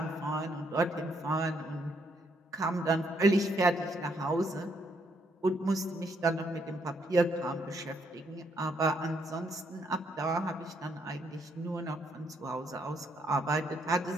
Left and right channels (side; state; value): both; normal; correlation 0.73